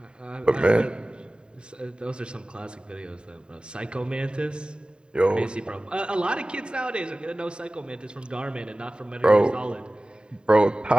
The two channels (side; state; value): left; late; 0.050 ms